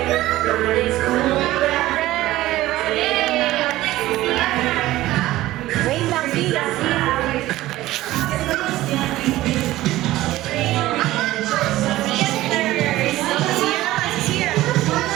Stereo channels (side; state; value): left; quieter; 16.2 dB